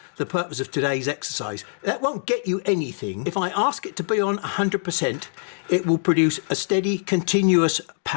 the purpose of today's exercise. That won't get you anything. If I ask it to be on 100%, it will produce a steady, continuous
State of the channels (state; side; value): silent; right; digital silence